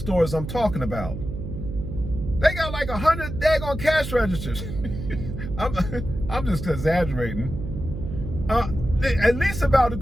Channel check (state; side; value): noise; right; hum, 7 dB below the sound